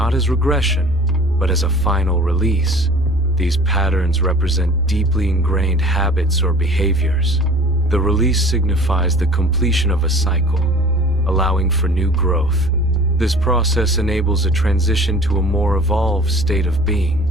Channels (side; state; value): both; normal; correlation 0.45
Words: as regression, but as a final release. These patterns represent deeply ingrained habits or behaviors. The release signifies the completion of a cycle, allowing for new growth. This process enables a transition to a more evolved state of being.